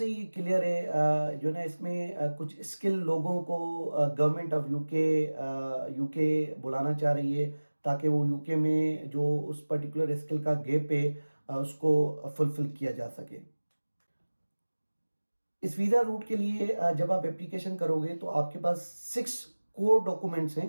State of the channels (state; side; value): inverted; both; correlation -1.00